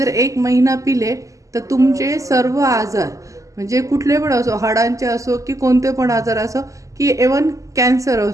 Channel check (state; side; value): late; left; 0.16 ms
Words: 1 महिना पिले तर तुमचे सर्व आजार, म्हणजे कुठले पण असो, हाडांचे असो की कोणते पण आजार असो, की इव्हन कॅन्सर